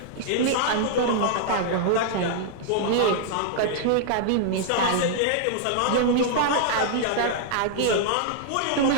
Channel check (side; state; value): both; different; correlation -0.01